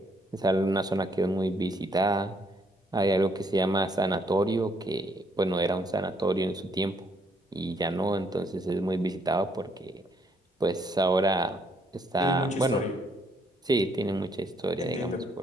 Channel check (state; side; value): normal; both; correlation 0.70